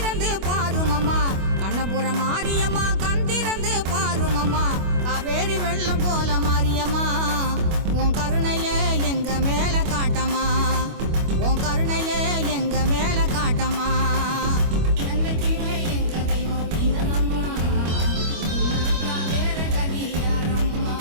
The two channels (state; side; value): late; left; 25 ms